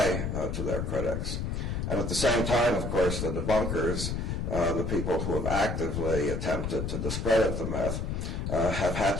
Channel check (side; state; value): left; noise; rumble, 2 dB below the sound